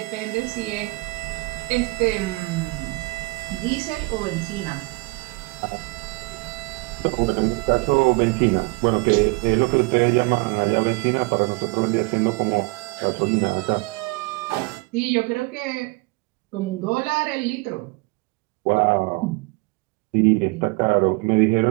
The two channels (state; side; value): quieter; left; 26.9 dB